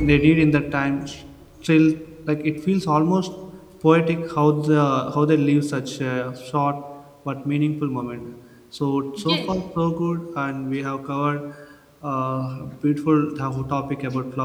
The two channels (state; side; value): identical; both; correlation 1.00